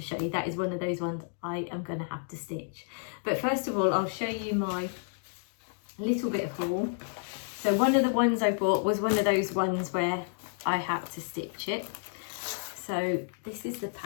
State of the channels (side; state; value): right; silent; digital silence